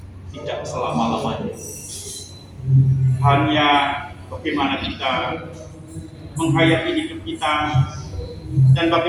tidak selama-lamanya. Hanya bagaimana kita menghayati hidup kita dan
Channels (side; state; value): both; identical; correlation 1.00